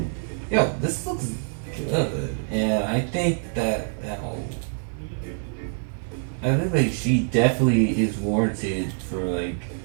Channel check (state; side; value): silent; left; 62 dB below the other